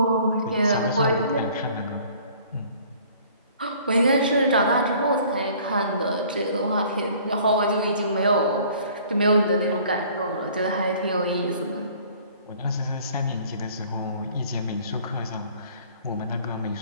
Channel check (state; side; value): inverted; both; correlation -0.53